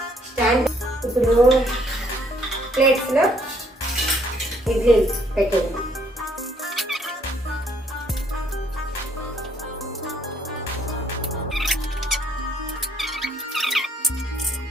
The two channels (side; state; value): both; normal; correlation 0.66